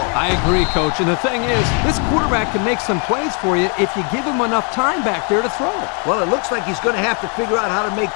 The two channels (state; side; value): quieter; right; 37.6 dB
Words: I agree, Coach. And the thing is, this quarterback can make some plays for you if you give him enough time back there to throw it. Well, it looks like he's going to have to figure out how to make